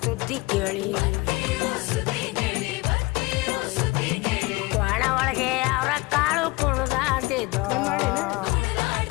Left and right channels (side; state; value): right; quieter; 23.1 dB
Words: ಸುದ್ದಿ ಕೇಳಿ ಒಣ ಒಳಗೆ ಅವರ ಕಾಳು ಕುಣಿದಾಡ್ತಿದ್ದು